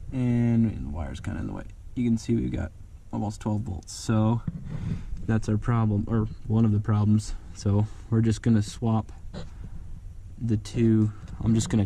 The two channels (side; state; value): both; identical; correlation 1.00